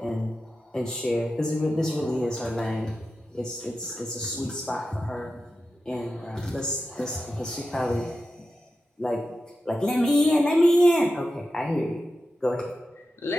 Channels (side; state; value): both; normal; correlation 0.91